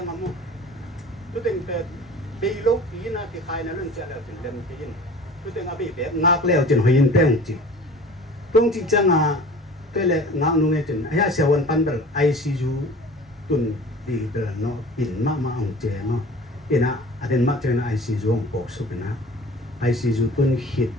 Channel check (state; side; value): normal; both; correlation 0.43